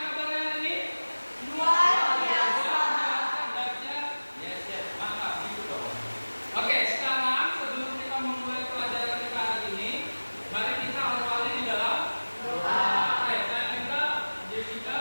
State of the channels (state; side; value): inverted; both; correlation -1.00